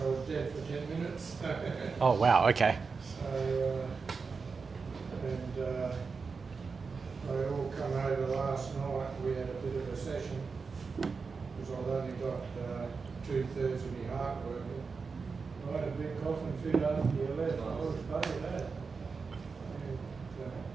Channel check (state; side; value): quieter; left; 4.9 dB